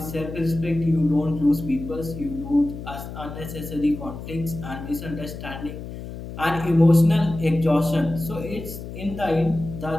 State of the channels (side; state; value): left; noise; hum, 10 dB below the sound